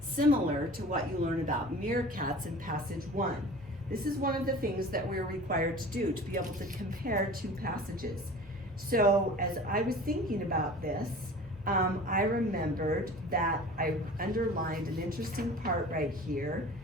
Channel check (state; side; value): normal; both; correlation 0.40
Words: similar to what you learn about meerkats in passage 1? This is one of the things that we're required to do, to be able to compare 2 passages. So as I was thinking about this, I remembered that I underlined an interesting part right here